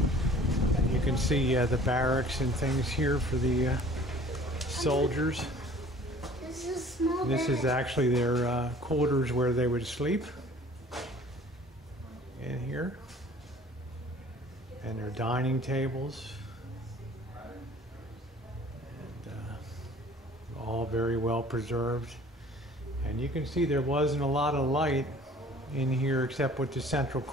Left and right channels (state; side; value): normal; both; correlation 0.50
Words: You can see the barracks and things here for the soldiers. This is actually their quarters where they would sleep in here. And their dining tables. And all very well preserved. And you can see there wasn't a lot of light in here except what the central